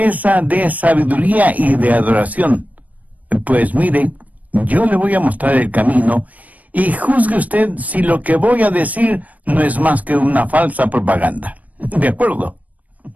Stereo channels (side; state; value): left; late; 0.073 ms